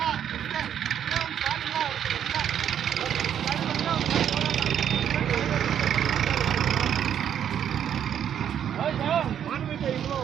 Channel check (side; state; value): left; quieter; 9.4 dB